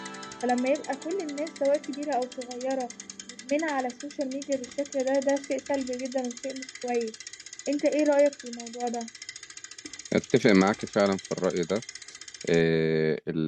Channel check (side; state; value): both; identical; correlation 1.00